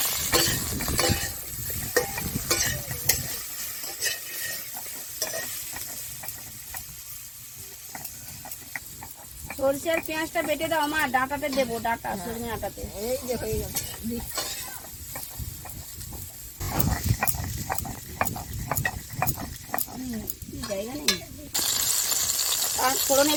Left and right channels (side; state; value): both; identical; correlation 1.00